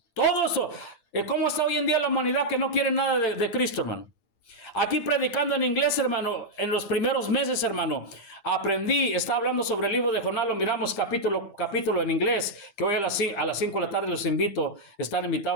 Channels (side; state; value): right; late; 8.8 ms